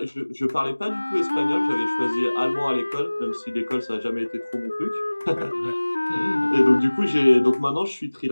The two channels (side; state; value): both; inverted; correlation -1.00